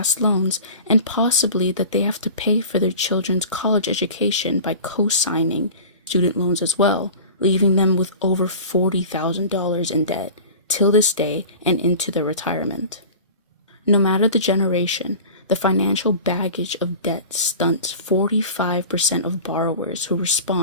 loans and possibly that they have to pay for their children's college education by co-signing student loans as well, leaving them with over $40,000 in debt till this day and into their retirement. No matter the generation, the financial baggage of debt stunts 45% of borrowers who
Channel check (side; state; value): both; inverted; correlation -0.37